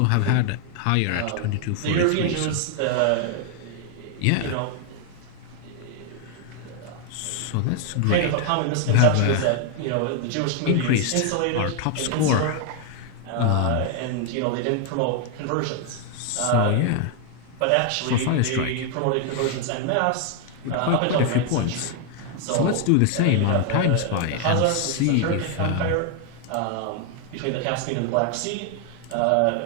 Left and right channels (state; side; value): different; both; correlation 0.00